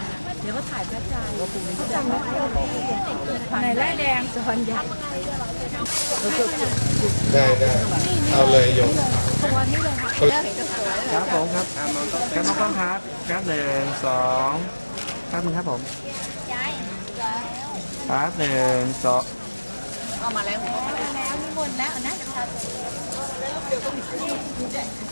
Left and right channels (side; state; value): both; inverted; correlation -1.00